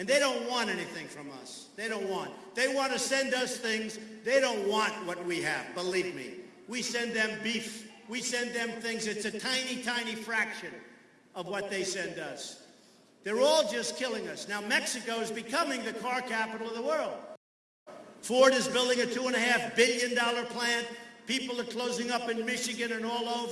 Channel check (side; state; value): both; identical; correlation 1.00